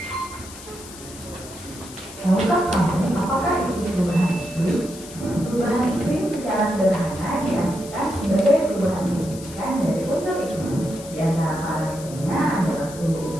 Tahukah kamu apakah itu perubahan iklim? Perubahan iklim secara sederhana diartikan sebagai perubahan signifikan dari unsur iklim. Di antara parameternya adalah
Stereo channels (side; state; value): left; noise; hiss, 16 dB below the sound